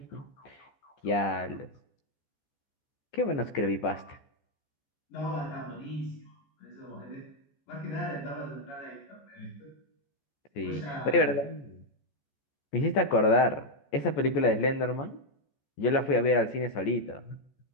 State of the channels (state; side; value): late; right; 14 ms